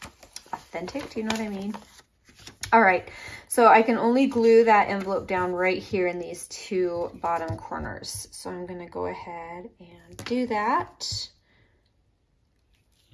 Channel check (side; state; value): both; identical; correlation 1.00